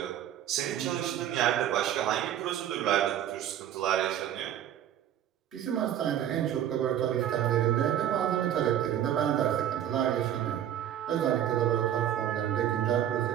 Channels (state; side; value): quieter; left; 10.8 dB